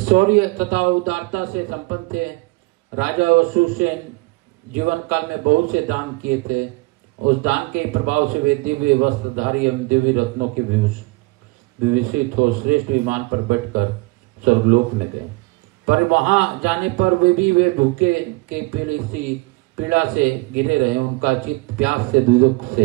तथा उदारता से संपन्न थे। राजा वसुसेन जीवन काल में बहुत से दान किए थे। उस दान के प्रभाव से वे दिव्य वस्त्रधारी एवं दिव्य रत्नों के विभूषित हो श्रेष्ठ विमान पर बैठकर स्वर्गलोक में गए। पर वहां जाने पर वे भूखे के पीड़ा से घिरे रहे। उनका चित्त प्यास से दुख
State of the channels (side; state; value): left; quieter; 24.6 dB